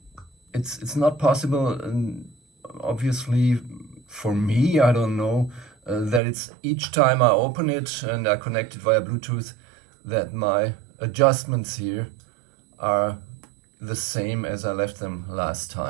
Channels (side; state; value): left; drops out; at 6.2 s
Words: It's not possible, obviously, for me, I don't know, that it's each time I open it and I connect it via Bluetooth, that my adjustments here are the same as I left them last